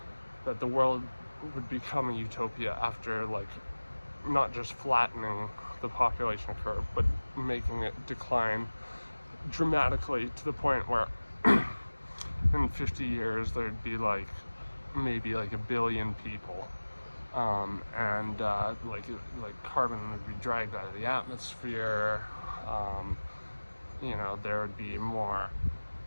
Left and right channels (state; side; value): inverted; both; correlation -1.00